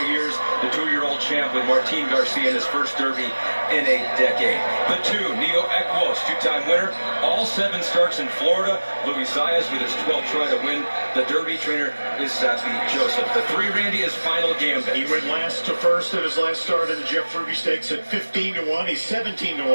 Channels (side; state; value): both; inverted; correlation -1.00